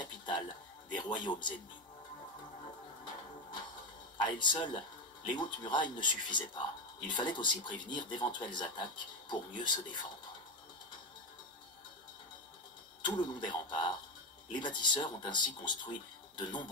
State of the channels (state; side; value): normal; both; correlation 0.13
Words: des royaumes ennemis. À elles seules, les hautes murailles ne suffisaient pas. Il fallait aussi prévenir d'éventuelles attaques pour mieux se défendre. Tout le long des remparts, les bâtisseurs ont ainsi construit de